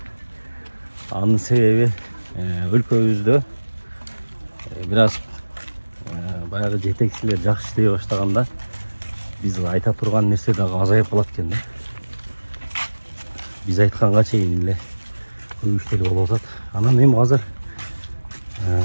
Анын себеби өлкөбүздө бир аз баягы жетекчилер жакшы иштей баштаганда биз айта турган нерсе дагы азайып калат экен да. Биз айтканга чейин эле көп иштер болуп атат. Анан эми азыр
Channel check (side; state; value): both; inverted; correlation -1.00